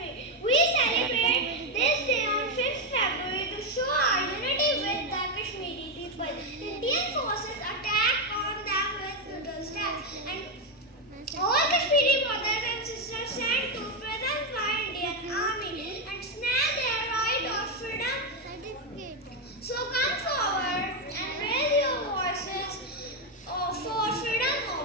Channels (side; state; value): both; normal; correlation 0.06